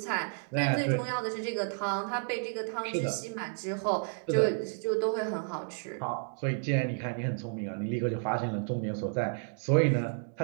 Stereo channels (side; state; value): left; silent; 57 dB below the other